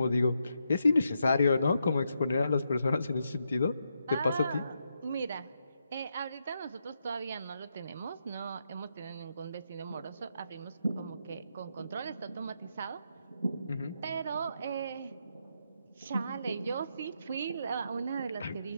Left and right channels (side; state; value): both; inverted; correlation -0.82